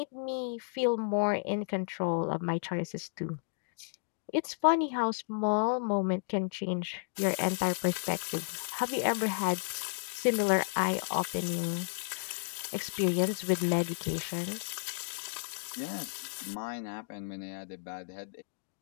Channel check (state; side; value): silent; right; digital silence